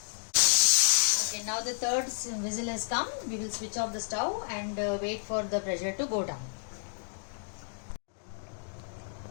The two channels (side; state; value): right; silent; digital silence